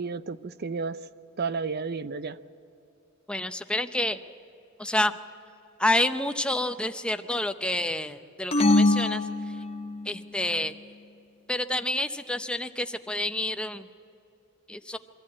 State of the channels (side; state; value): both; normal; correlation 0.60